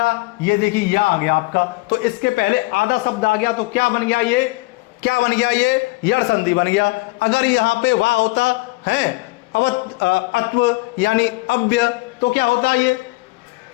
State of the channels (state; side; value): quieter; right; 22.6 dB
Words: ये देखिए या आ गया आपका, तो इसके पहले आधा शब्द आ गया, तो क्या बन गया? ये क्या बन गया? ये यड़ संधि बन गया। अगर यहां पे वा होता है अत्व यानी अव्य, तो क्या होता? ये